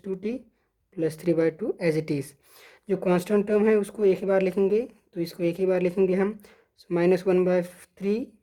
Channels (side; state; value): both; identical; correlation 1.00